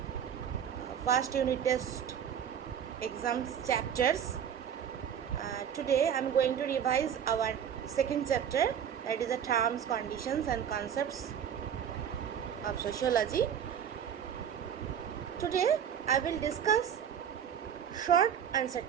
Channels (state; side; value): quieter; left; 8.6 dB